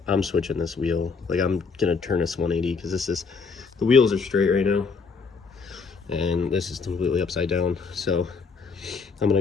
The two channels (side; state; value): right; quieter; 4.9 dB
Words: I'm switching this wheel. Like I'm gonna turn this 180 because the wheels are straight right now, and this is completely upside down. So I'm